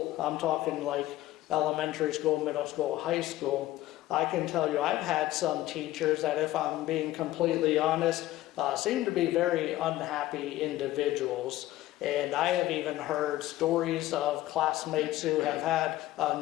I'm talking like elementary school, middle school, high school, I can tell you I've had some teachers that, if I'm being completely honest, seem to be very unhappy individuals. And I have even heard stories of classmates who have had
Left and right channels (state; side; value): quieter; right; 15.5 dB